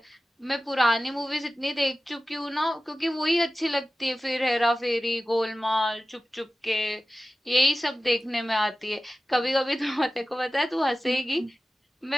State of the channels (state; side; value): normal; both; correlation 0.95